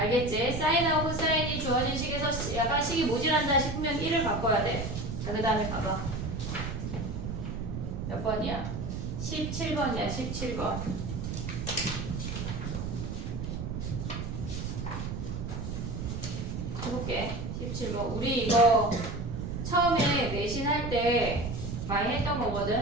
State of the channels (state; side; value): noise; right; rumble, 4 dB below the sound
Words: 사인하고 코사인이 주어진 식에서 약간 식이 모질한다 싶으면 1을 바꿔야 돼. 자, 그 다음에 가봐. 몇 번이야? 17번이야, 17번. 해볼게. 17번. 우리 이거 처음에 내신 할 때 많이 했던 거거든?